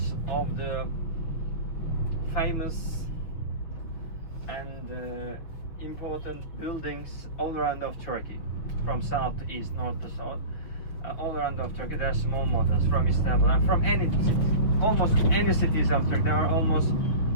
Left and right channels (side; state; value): right; late; 6.5 ms